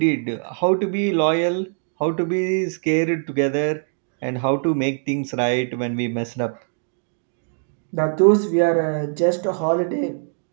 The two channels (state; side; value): silent; left; digital silence